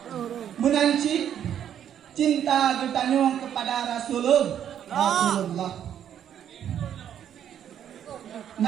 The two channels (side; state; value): left; quieter; 9.7 dB